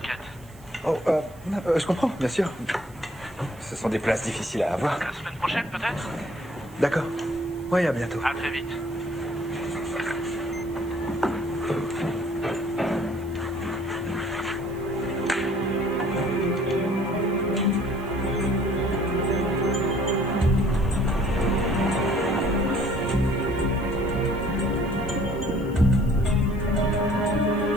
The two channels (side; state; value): right; noise; hiss, 26 dB below the sound